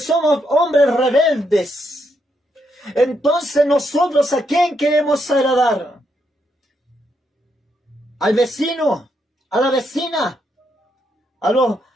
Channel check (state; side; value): normal; both; correlation 0.79